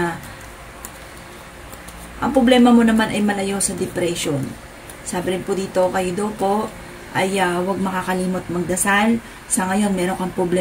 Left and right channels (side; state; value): both; identical; correlation 1.00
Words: ang problema mo naman ay malayo sa depression. Sabi rin po dito kayo daw po ay huwag makakalimot magdasal. Sa ngayon, meron kang